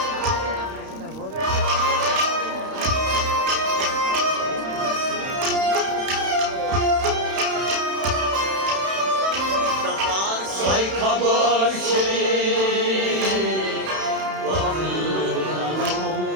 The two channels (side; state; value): left; late; 31 ms